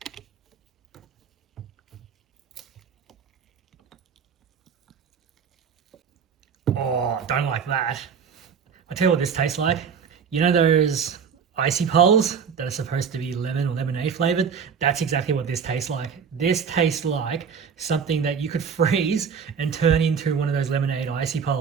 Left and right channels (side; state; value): left; quieter; 6.6 dB